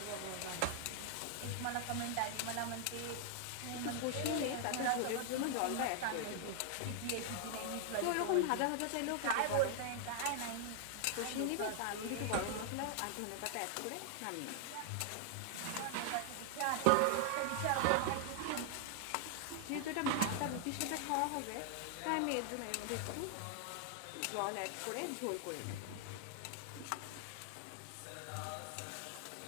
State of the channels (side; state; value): both; different; correlation 0.00